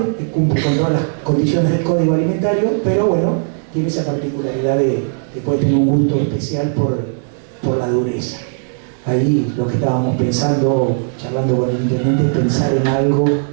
que cumple con todas las condiciones del código alimentario, pero bueno, tiene esa particularidad de que puede tener un gusto especial por la dureza. Ahí lo que estábamos pensando, charlando con el intendente, es pensar en algo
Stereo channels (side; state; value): left; silent; digital silence